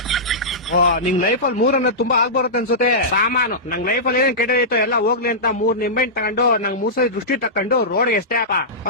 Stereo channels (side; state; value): both; normal; correlation -0.15